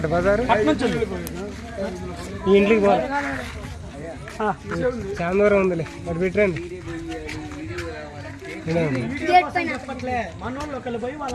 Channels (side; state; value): both; identical; correlation 1.00